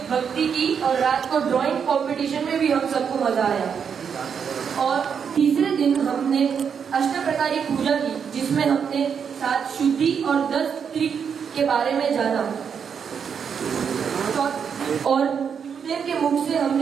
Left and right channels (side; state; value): left; quieter; 7.0 dB